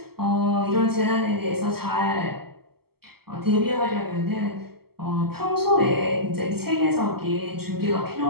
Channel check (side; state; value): left; late; 0.96 ms